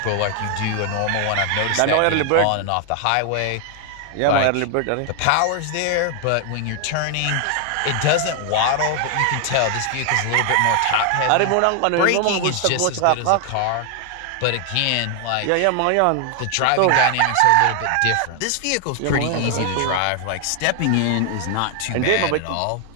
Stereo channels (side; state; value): both; different; correlation 0.00